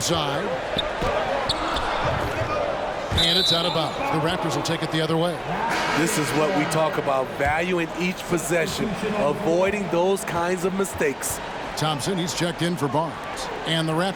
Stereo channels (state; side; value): identical; both; correlation 1.00